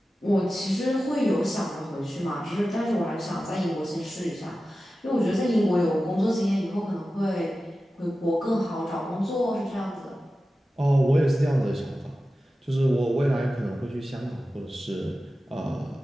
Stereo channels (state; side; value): normal; both; correlation 0.94